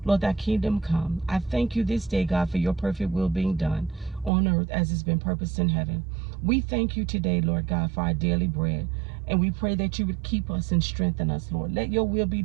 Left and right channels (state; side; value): drops out; left; at 4.3 s